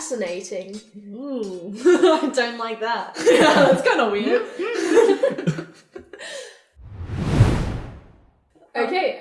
Ooh, I don't like that. Yeah, that's kind of weird. Okay,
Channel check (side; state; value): both; identical; correlation 1.00